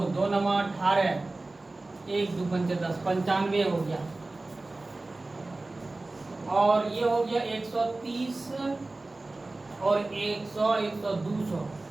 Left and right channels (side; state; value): left; quieter; 3.1 dB